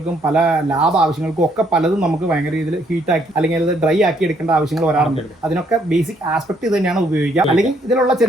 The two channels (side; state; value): both; normal; correlation 0.69